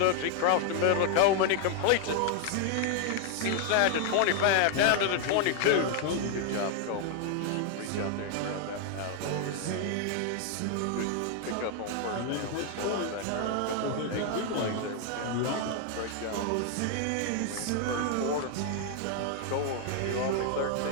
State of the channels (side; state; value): both; different; correlation 0.00